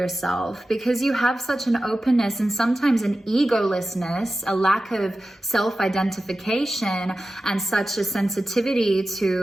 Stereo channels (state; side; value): normal; both; correlation 0.94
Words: because you have such an openness and sometimes an egolessness, a lack of self-identification, and such a sensitivity